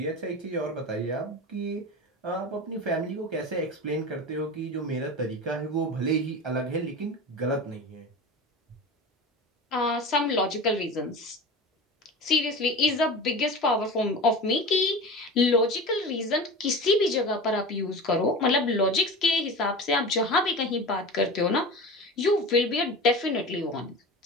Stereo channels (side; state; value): both; normal; correlation 0.31